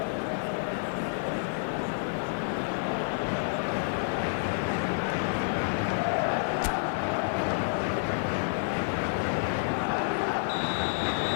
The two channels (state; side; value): silent; right; 58 dB below the other